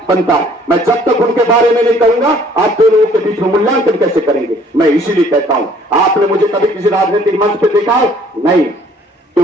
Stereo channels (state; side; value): normal; both; correlation 0.58